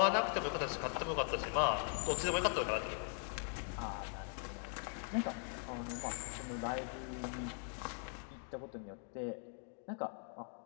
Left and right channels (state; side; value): silent; right; 51 dB below the other